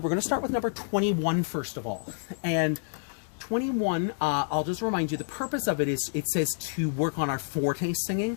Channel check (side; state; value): right; silent; digital silence